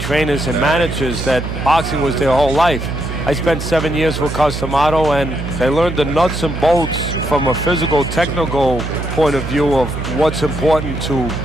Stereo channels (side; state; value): right; noise; hum, 6 dB below the sound